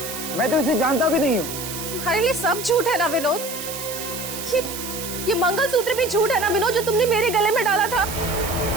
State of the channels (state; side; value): noise; right; hiss, 8 dB below the sound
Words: मैं तो इसे जानता भी नहीं हूँ। तुम्हारे लिए सब झूठ है ना विनोद? ये मंगलसूत्र भी झूठ है ना विनोद, जो तुमने मेरे गले में डाला था?